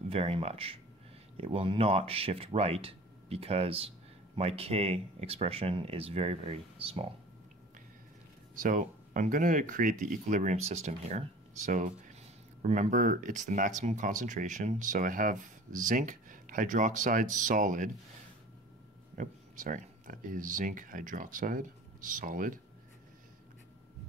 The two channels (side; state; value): both; normal; correlation 0.43